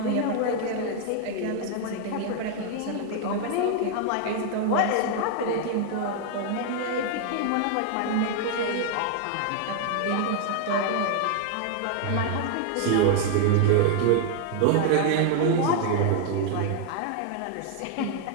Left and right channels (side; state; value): both; different; correlation 0.00